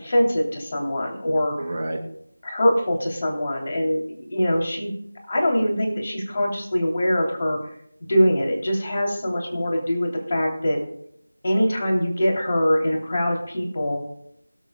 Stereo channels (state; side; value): inverted; both; correlation -0.97